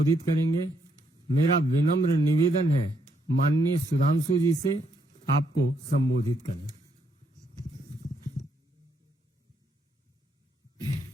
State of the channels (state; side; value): normal; both; correlation 0.74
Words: करेंगे। मेरा विनम्र निवेदन है माननीय सुधांशु जी से आपको संबोधित करें।